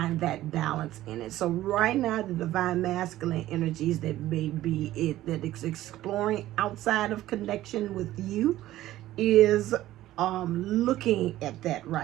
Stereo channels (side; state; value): left; quieter; 14.7 dB